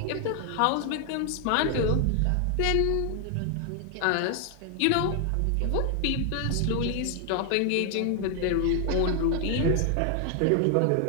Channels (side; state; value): both; different; correlation 0.00